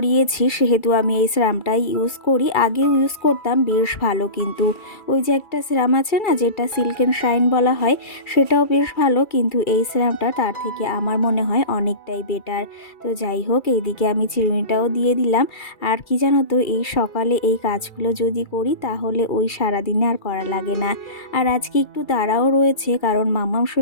সেহেতু আমি এই সিরামটাই ইউজ করি। আগেও ইউজ করতাম, বেশ ভালো কিন্তু। ওই যে একটা সিরাম আছে না যেটা সিল্ক অ্যান্ড শাইন বলা হয়, সেটাও বেশ ভালো, কিন্তু এই সিরামটা তার থেকে আমার মনে হয় অনেকটাই বেটার। তো যাই হোক এইদিকে আমি চিরুনিটাও দিয়ে দিলাম। আর কি জানো তো, এই সকালে এই কাজগুলো যদি করি তাহলে ওই সারাদিনে আর করা লাগে না। আর আজকে একটু তাড়াও রয়েছে, কারণ মাম্মাম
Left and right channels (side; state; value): right; late; 2.3 ms